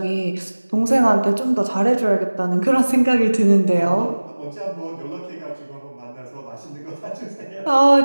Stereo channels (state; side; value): inverted; both; correlation -1.00